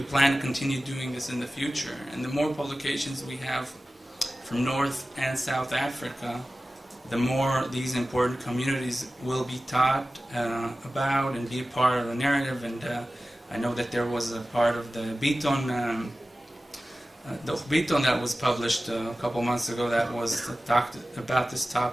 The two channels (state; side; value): normal; both; correlation 0.96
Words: plan to continue doing this in the future, and the more publications we have from North and South Africa, the more these important communities will be taught about and be a part of the narrative. And I know that there was a part of the Biton that was published a couple months ago that was talked about this